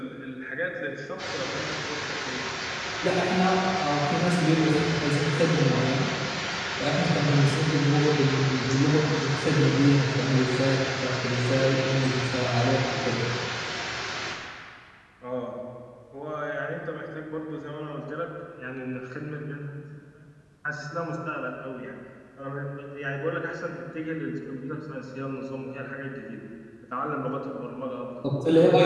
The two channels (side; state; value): both; identical; correlation 1.00